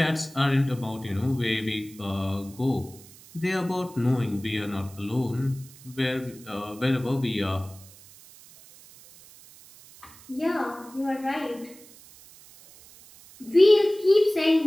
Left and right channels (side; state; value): right; noise; hiss, 22 dB below the sound